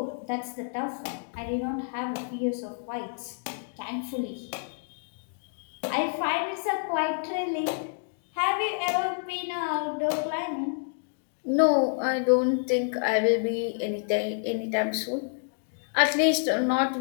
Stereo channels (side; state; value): right; silent; digital silence